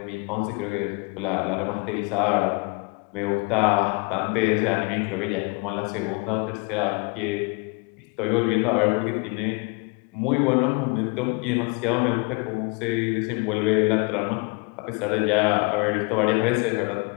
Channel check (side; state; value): right; quieter; 30.8 dB